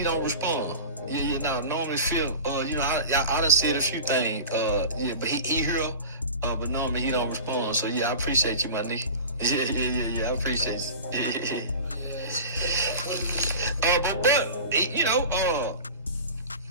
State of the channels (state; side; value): inverted; both; correlation -0.33